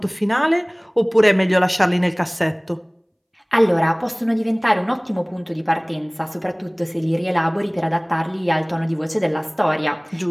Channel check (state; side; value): identical; both; correlation 1.00